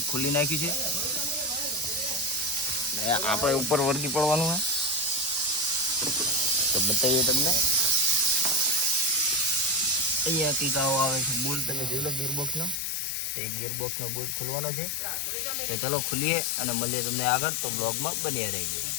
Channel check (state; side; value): drops out; right; at 12.8 s